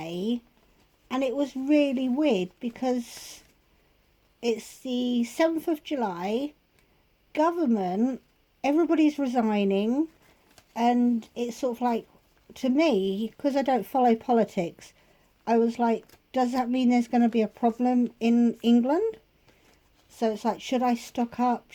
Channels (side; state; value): both; identical; correlation 1.00